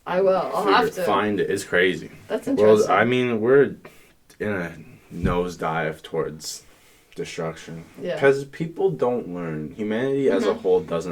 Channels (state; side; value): identical; both; correlation 1.00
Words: I will. I'll have to. Find it. It's crazy. That's interesting. Well, I mean, we're in a nosedive towards... destruction because people don't learn. Humanity as a whole